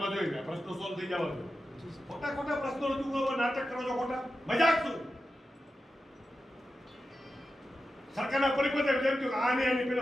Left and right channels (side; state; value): both; normal; correlation 0.91